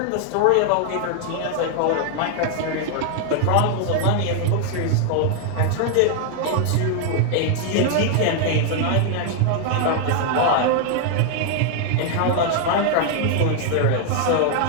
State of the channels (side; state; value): both; different; correlation 0.00